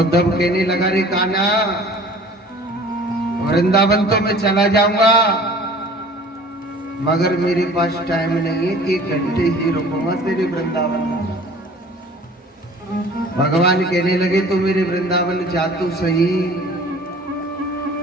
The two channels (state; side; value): normal; both; correlation 0.47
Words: कहने लगा, रे कान्हा, वृंदावन तो मैं चला जाऊंगा, मगर मेरे पास टाइम नहीं है, 1 घंटे ही रुकूंगा तेरे वृंदावन में। भगवान कहने लगे, तो मेरे वृंदावन जा तो सही,